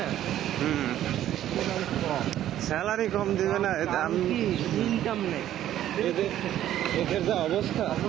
একেবারে কম স্যালারি কম দিবে না আমি ইনকাম নেই এদের যা অবস্থা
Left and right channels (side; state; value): left; quieter; 12.2 dB